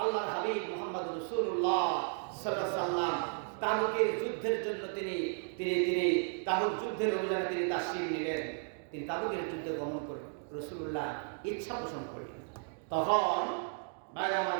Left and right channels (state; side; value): silent; left; 55 dB below the other